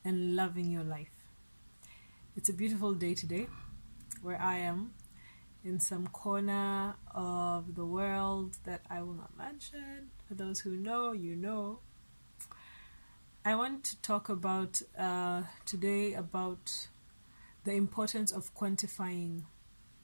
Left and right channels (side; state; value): both; inverted; correlation -1.00